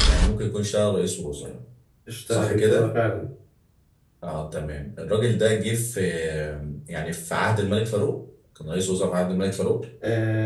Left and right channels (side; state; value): both; identical; correlation 1.00